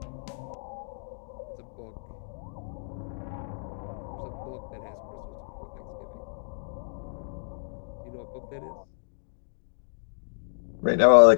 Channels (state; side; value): silent; right; digital silence